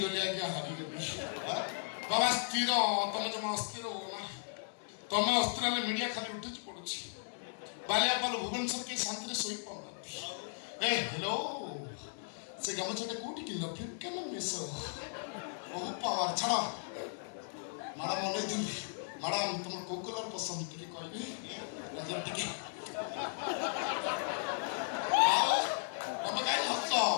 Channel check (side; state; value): right; silent; digital silence